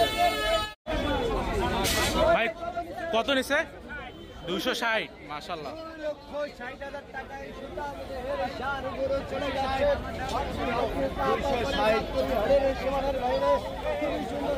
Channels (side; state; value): both; identical; correlation 1.00